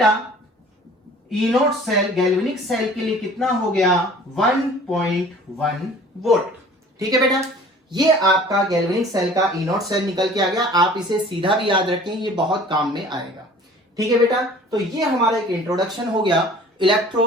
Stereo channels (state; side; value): normal; both; correlation 0.48